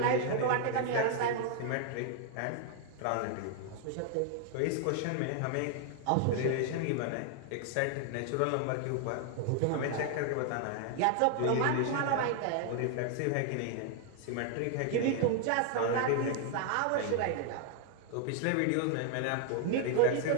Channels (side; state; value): both; different; correlation 0.00